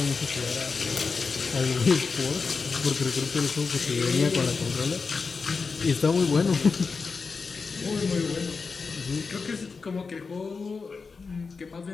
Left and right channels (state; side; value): quieter; right; 4.8 dB